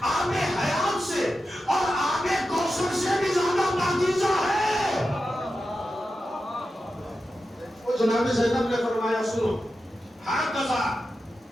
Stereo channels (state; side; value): normal; both; correlation 0.91